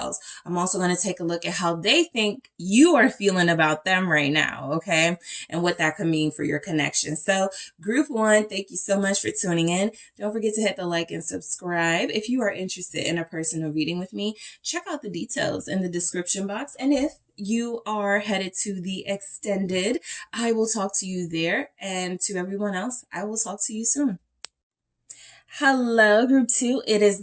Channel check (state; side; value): identical; both; correlation 1.00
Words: I'm also going to take a look at how they think you are feeling about them right now, okay? And what that could mean for your connection. So group one, thank you so much for tuning in. Don't forget to hit the like and subscribe. If you are interested in a personal reading with me, check out the details in the description box. And if you are headed to the extended, I will talk to you there. And to everyone else, I will talk to you soon. Hello, group two. It is